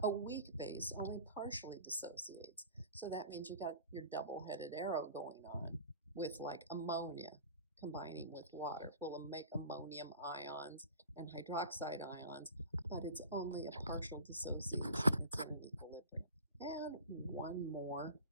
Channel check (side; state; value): both; inverted; correlation -0.38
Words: A weak base only partially dissociates. So that means you got your double-headed arrow going on with like ammonia combining with water. We'll make ammonium ions and hydroxide ions, but it's only a partial dissociation. It's in an equilibrium. And one more